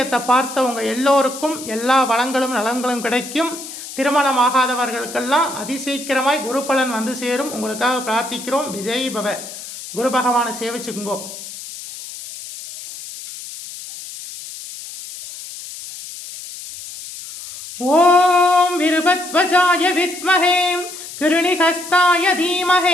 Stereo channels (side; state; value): left; noise; hiss, 12 dB below the sound